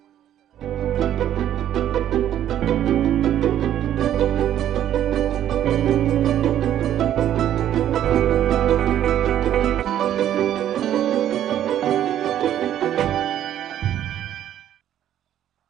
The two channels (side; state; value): left; quieter; 11.2 dB